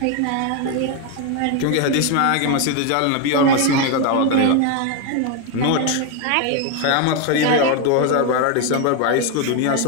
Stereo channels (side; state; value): both; different; correlation 0.01